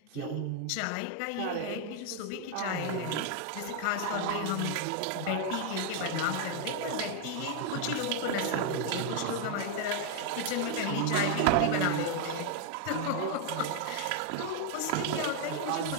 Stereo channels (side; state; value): both; different; correlation 0.01